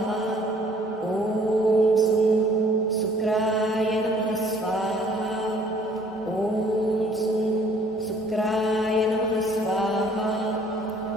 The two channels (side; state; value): both; normal; correlation 0.58